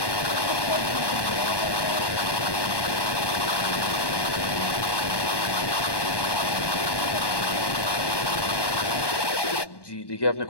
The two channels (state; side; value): late; right; 1.2 ms